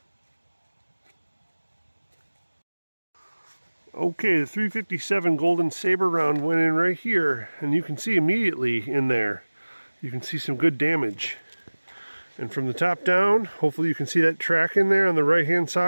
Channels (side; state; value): both; inverted; correlation -1.00